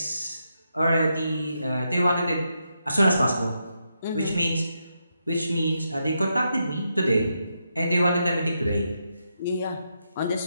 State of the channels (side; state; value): both; inverted; correlation -0.82